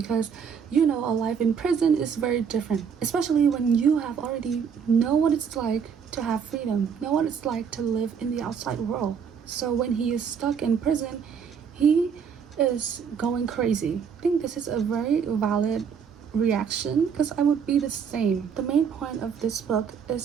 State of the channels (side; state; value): left; quieter; 6.9 dB